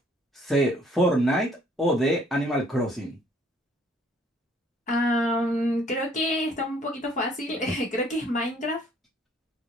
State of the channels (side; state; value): both; normal; correlation 0.61